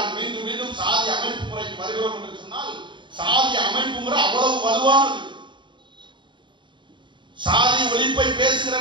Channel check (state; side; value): late; left; 0.23 ms